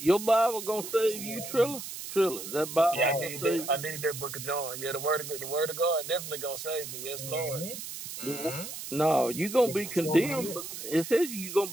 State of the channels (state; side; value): noise; right; hiss, 9 dB below the sound